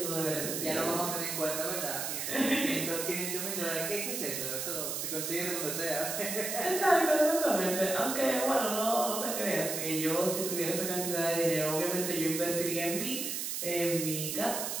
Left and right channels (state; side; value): noise; right; hiss, 3 dB below the sound